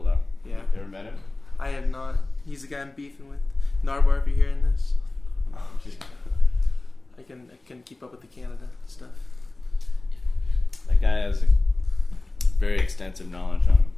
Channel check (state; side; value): quieter; right; 3.0 dB